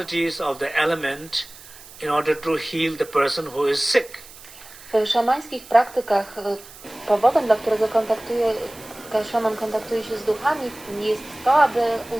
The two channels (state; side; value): noise; right; hiss, 19 dB below the sound